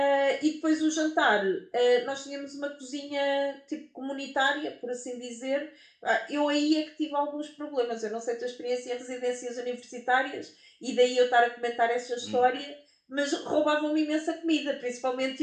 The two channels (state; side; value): identical; both; correlation 1.00